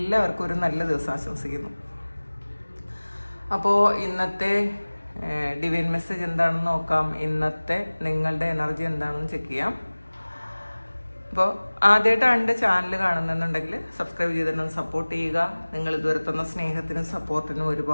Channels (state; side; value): inverted; both; correlation -1.00